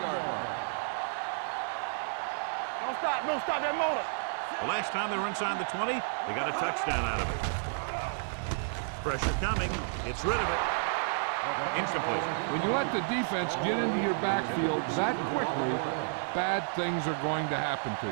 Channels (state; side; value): silent; left; digital silence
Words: stop that motor. The last time they were inside the 20, they got a touchdown out of it. Pressure coming. Gets rid of it. Incomplete. When you let the defense get into your backfield that quickly, bad things are going to happen to